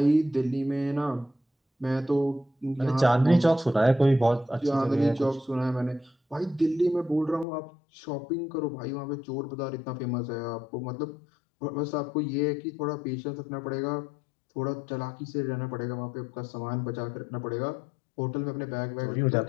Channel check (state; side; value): drops out; right; at 7.5 s